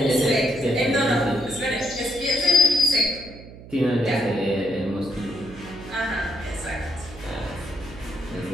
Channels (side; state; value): right; noise; hum, 17 dB below the sound